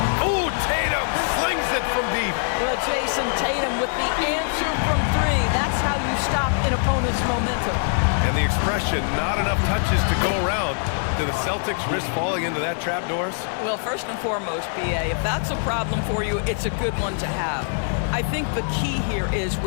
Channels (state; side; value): silent; right; digital silence